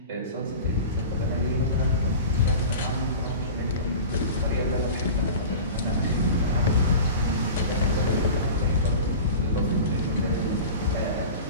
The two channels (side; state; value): both; inverted; correlation -0.34